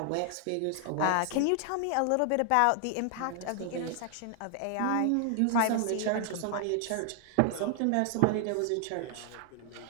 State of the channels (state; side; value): different; both; correlation 0.00